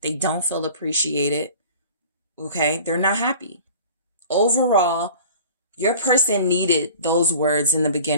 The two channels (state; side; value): inverted; both; correlation -0.44